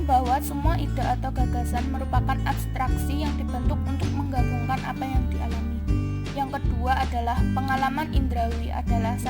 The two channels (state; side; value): identical; both; correlation 1.00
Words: bahwa semua ide atau gagasan merupakan abstraksi yang dibentuk untuk menggabungkan apa yang dialami. Yang kedua adalah pengalaman indrawi adalah